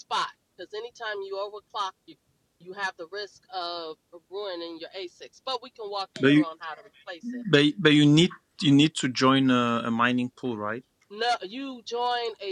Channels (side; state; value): both; identical; correlation 1.00